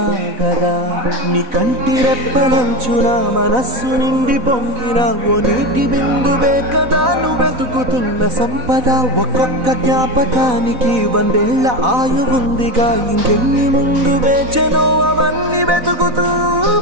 నీ కంటి రెప్పలంచున మనస్సు నిండి పొంగిన ఓ నీటి బిందువే కదా నువ్వెతుకుతున్న సంపద ఒక్కొక్క జ్ఞాపకానికి 100 ఏళ్ల ఆయువుందిగా ఇంకెన్ని ముందు వేచనో అవన్నీ వెతుకుతూ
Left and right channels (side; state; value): left; late; 4.0 ms